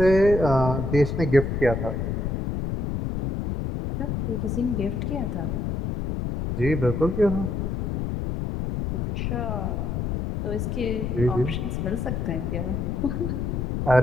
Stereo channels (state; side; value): noise; left; rumble, 1 dB below the sound